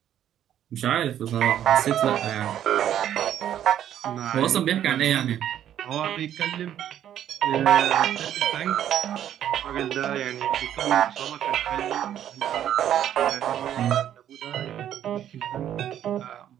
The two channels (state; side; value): quieter; left; 10.7 dB